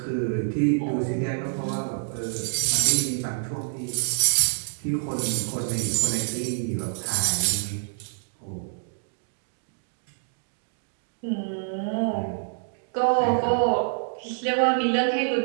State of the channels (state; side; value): silent; left; digital silence